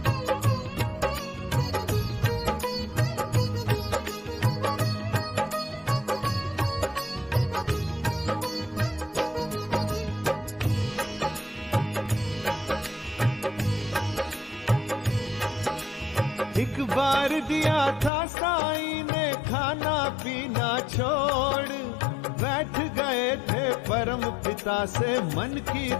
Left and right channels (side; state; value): right; drops out; at 18.1 s